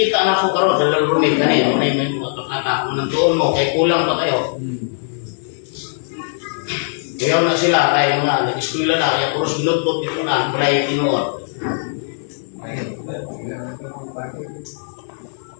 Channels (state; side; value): silent; right; 66 dB below the other